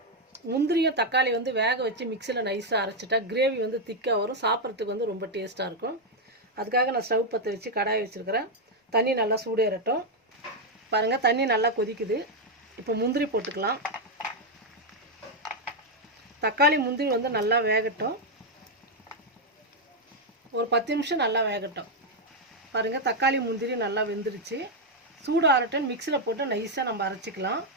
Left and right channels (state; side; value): normal; both; correlation 0.01